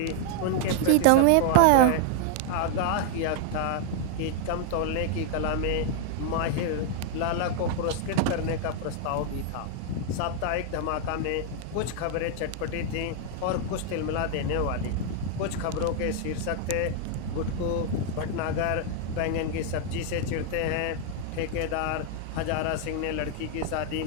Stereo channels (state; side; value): different; both; correlation 0.00